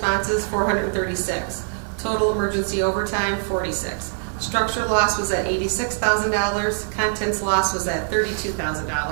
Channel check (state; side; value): silent; left; digital silence